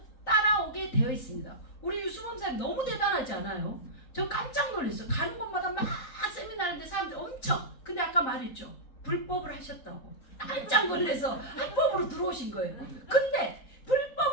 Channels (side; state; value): right; late; 3.8 ms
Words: 따라오게 되어 있습니다. 우리 유수범 사님 너무 대단하지 않아요? 저 깜짝 놀랐어요. 가는 곳마다 막 세미나 하는데 사람들이 엄청. 근데 아까 말했죠. 불법을 하셨다고. 깜짝 놀라서 합법으로 들어오신 거예요. 근데